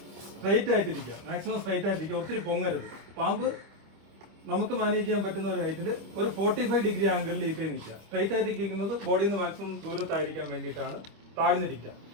സ്ട്രൈറ്റ് ആയിട്ടിരിക്കുക, മാക്സിമം സ്ട്രൈറ്റ് ആയിട്ടിരിക്കുക, ഒത്തിരി പൊങ്ങരുത്. പാമ്പ് നമുക്ക് മാനേജ് ചെയ്യാൻ പറ്റുന്ന ഒരു ഹൈറ്റിൽ ഒരു 45 ഡിഗ്രി ആംഗിളിൽ ഈ കൈ നിൽക്കുക. സ്ട്രൈറ്റ് ആയിട്ടിരിക്കുന്നത് ബോഡിയിൽ നിന്ന് മാക്സിമം ദൂരത്തായിരിക്കാൻ വേണ്ടിയിട്ടാണ്. താഴ്ന്നിരിക്കുക,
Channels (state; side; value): late; left; 25 ms